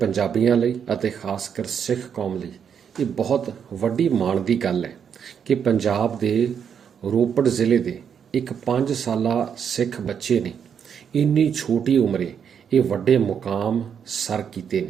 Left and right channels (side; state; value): left; quieter; 7.6 dB